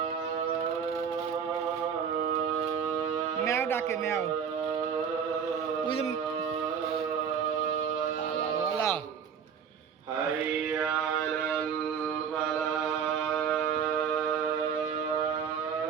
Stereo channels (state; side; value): quieter; left; 7.2 dB